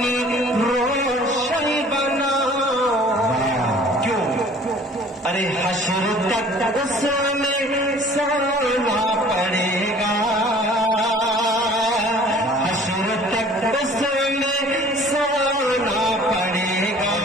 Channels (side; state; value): both; normal; correlation 0.50